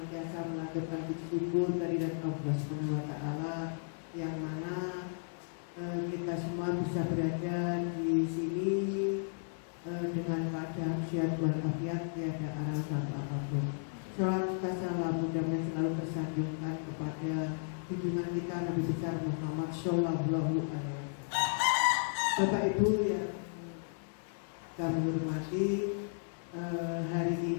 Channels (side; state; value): right; silent; 55 dB below the other